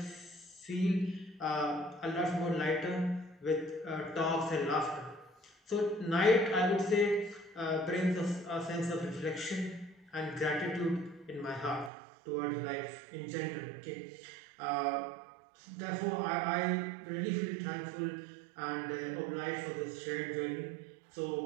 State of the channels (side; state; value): left; drops out; at 11.9 s